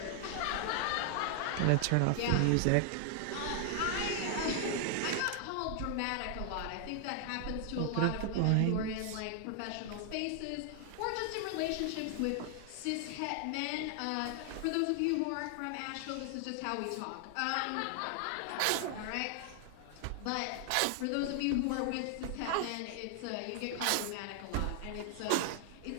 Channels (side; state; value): both; different; correlation 0.00